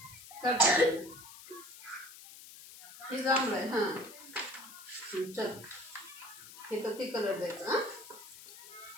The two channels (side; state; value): left; noise; hiss, 16 dB below the sound